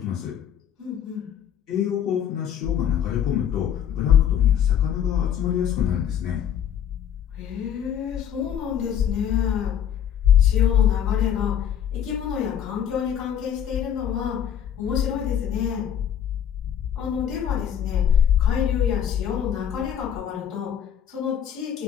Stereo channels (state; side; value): quieter; right; 9.2 dB